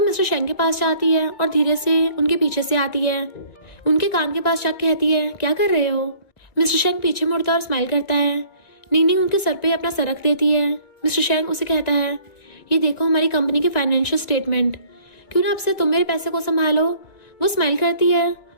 शेंग के पास जाती है और धीरे से उनके पीछे से आती है। उनके कान के पास जाकर कहती है, क्या कर रहे हो। मिस्टर शेंग पीछे मुड़ता और स्माइल करता है। नीनी उनके सर पे अपना सर रख देती है। मिस्टर शेंग उसे कहता है, ये देखो हमारी कंपनी के फाइनेंशियल स्टेटमेंट, क्यों ना अब से तुम मेरे पैसे को संभालो। वो स्माइल करती है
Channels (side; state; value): right; late; 2.0 ms